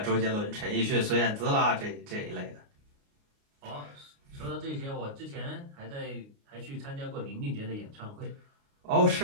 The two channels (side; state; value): left; late; 29 ms